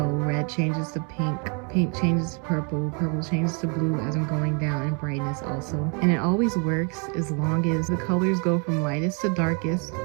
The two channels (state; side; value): quieter; left; 36.5 dB